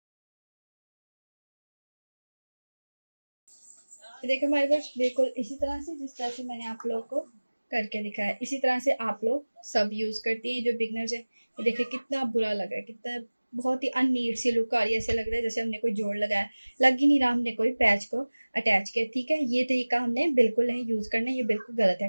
तो देखिए हमारे पास बिल्कुल इसी तरह से, जिस तरह से मैंने आप लोग को करके दिखाया, इसी तरह से आप लोग सब यूज करती हैं जो बिगनर्स है। ये देखिए कितना बुरा लग रहा है, कितना बहुत ही अननीट सी लुक आ रही है, ऐसे लग रहा है जैसे हमने कोई जोड़ लगाया, लग ही नहीं रहा हमने कोई पैच को अटैच किया, ठीक है। ये तरीका हमने बिल्कुल नहीं यूज करना, ये बिल्कुल गलत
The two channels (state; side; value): inverted; both; correlation -1.00